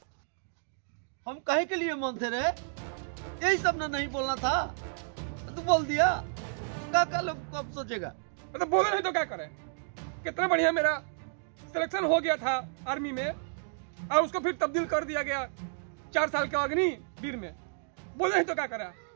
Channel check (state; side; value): silent; left; digital silence